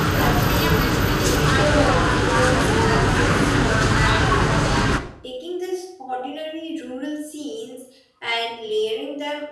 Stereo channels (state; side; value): identical; both; correlation 1.00